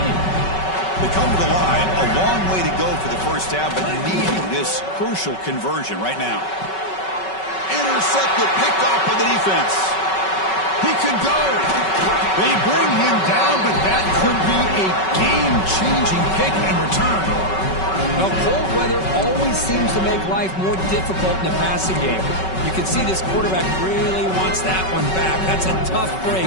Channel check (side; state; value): right; late; 5.3 ms